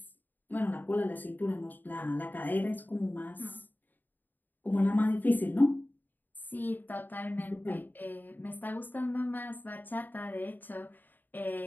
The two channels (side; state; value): right; late; 0.089 ms